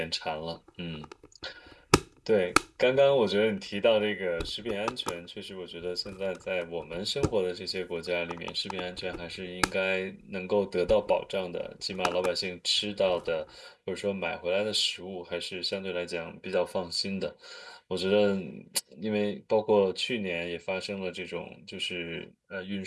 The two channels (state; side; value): identical; both; correlation 1.00